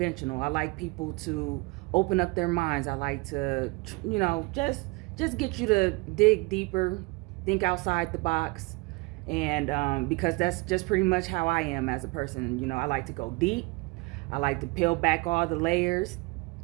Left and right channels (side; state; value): left; quieter; 25.2 dB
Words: I like people to open up their minds. I like to, just get you to dig deeper, think outside the box. And because that's just pretty much how I am as a person. I like to go deep. I like to peel back all the layers